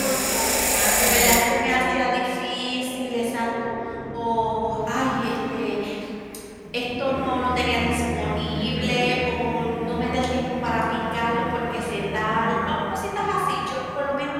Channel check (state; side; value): identical; both; correlation 1.00